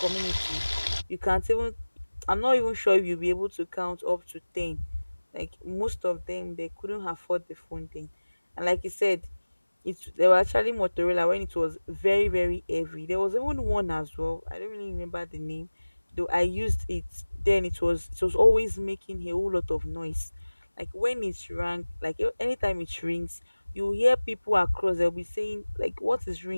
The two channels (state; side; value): inverted; both; correlation -1.00